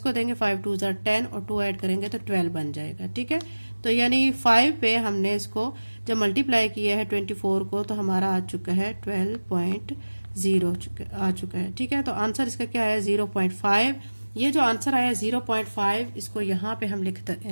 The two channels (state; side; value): inverted; both; correlation -1.00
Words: देंगे 5 2 ज़ा 10 और 2 ऐड करेंगे तो 12 बन जाएगा, ठीक है। तो यानी 5 पे हमने इसको जब मल्टीप्लाई किया है 24 को तो हमारा आ चुका है 12.0 आ चुका है, ठीक है। तो आंसर इसका क्या है 0.5। ये जो आंसर आया 0.5 इसको यहाँ पे हम